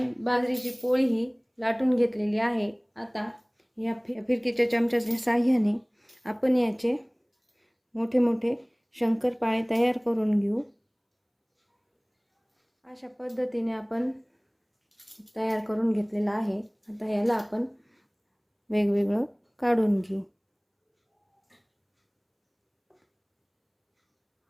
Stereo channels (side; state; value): both; identical; correlation 1.00